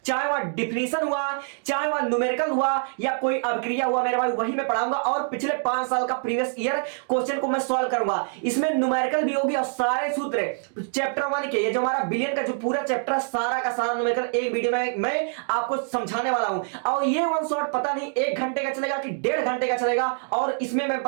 चाहे वह डिफिनीशन हुआ, चाहे वह न्यूमेरिकल हुआ या कोई अभिक्रिया हुआ, मेरे भाई वही मैं पढ़ाऊंगा। और पिछले 5 साल का प्रीवियस ईयर क्वेश्चन को मैं सॉल्व करूंगा। इसमें न्यूमेरिकल भी होगी और सारे सूत्र चैप्टर 1 के, ये जो हमारा बिलियन का जो पूरा चैप्टर सारा का सारा न्यूमेरिकल एक वीडियो में मैं आपको समझाने वाला हूं। और ये वन शॉट पता नहीं 1 घंटे का चलेगा कि 1.5 घंटे का चलेगा, और इसमें मैं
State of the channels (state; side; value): silent; left; 57 dB below the other